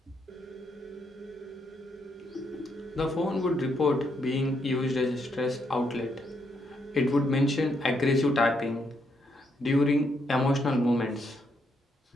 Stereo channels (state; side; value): normal; both; correlation 0.77